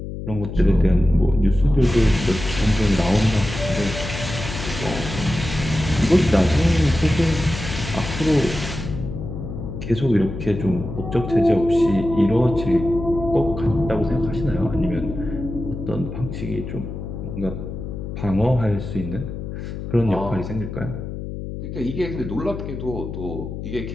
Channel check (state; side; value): noise; left; hum, 7 dB below the sound